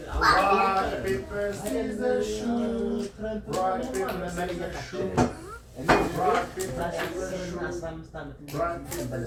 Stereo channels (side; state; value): both; identical; correlation 1.00